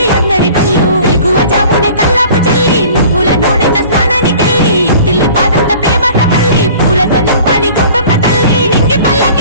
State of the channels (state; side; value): inverted; both; correlation -0.47